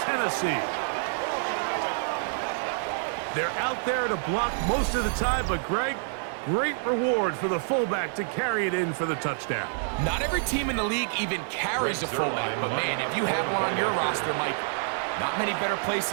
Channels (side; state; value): left; silent; 60 dB below the other